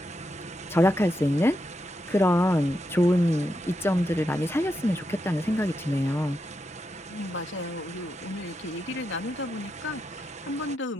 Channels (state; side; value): normal; both; correlation 0.85